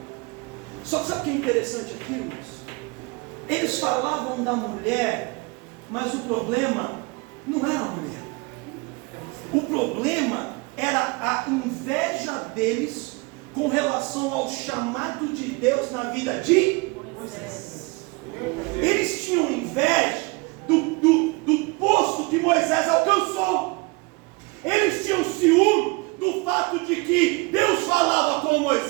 Só que sabe o que é interessante aqui, irmãos? Eles falavam da mulher, mas o problema não era a mulher. O problema era a inveja deles com relação ao chamado de Deus na vida de Moisés. Eles tinham inveja do posto que Moisés alcançou. Eles tinham ciúme do fato de que Deus falava com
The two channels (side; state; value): left; quieter; 27.2 dB